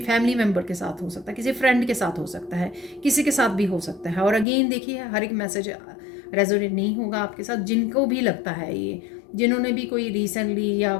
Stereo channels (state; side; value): drops out; right; at 4.5 s